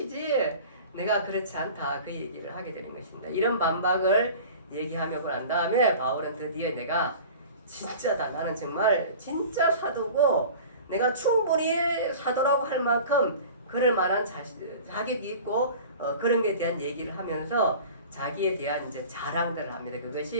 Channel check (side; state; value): both; inverted; correlation -0.40